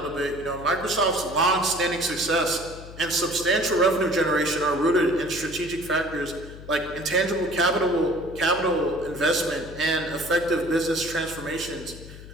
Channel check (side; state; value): left; noise; hum, 15 dB below the sound